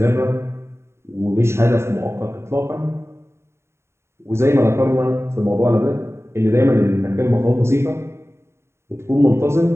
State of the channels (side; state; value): left; late; 0.13 ms